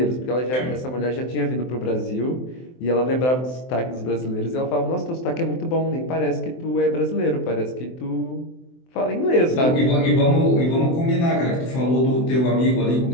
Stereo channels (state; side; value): late; right; 23 ms